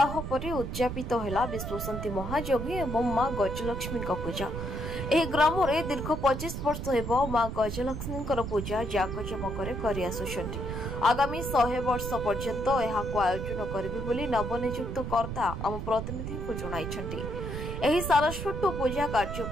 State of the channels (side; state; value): right; noise; rumble, 5 dB below the sound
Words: पर उद्यापित है विश्वशांति महायज्ञ एवं मां गजलक्ष्मी पूजा। यह ग्राम में दीर्घ 25 वर्ष हो मां गजलक्ष्मी पूजा जाकजमक आगामी 100 वर्ष पर्यंत आयोजन करेंगे नवनियुक्त कर्ता आम प्रतिनिधि को जणाइछन्ति। एही सारस्वत पूजा